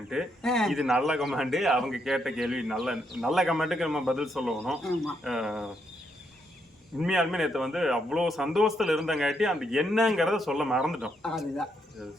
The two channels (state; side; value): normal; both; correlation 0.77